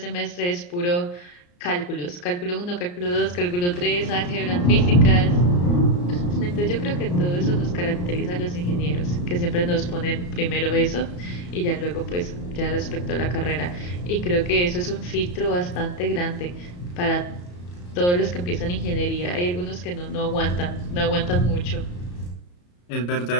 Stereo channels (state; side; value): late; right; 34 ms